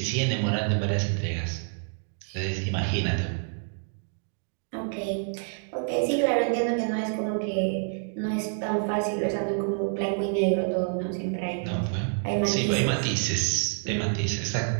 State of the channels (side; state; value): left; silent; 60 dB below the other